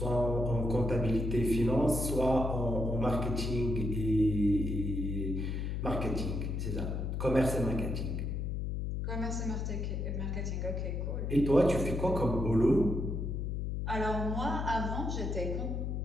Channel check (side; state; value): left; noise; hum, 2 dB below the sound